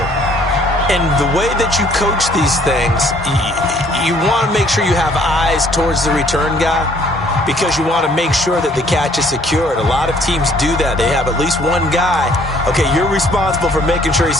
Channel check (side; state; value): both; normal; correlation 0.61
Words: And the way that you coach these things, you want to make sure you have eyes towards the return guy, because you want to make sure that the catch is secured. A lot of teams do that. They have at least one guy. Okay, you're responsible for making sure he